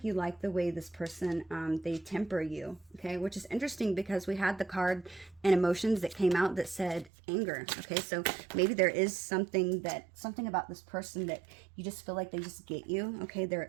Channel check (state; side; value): drops out; left; at 7.1 s